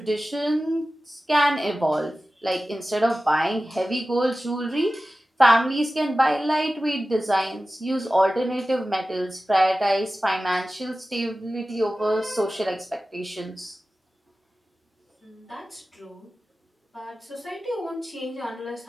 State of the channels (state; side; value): normal; both; correlation 0.96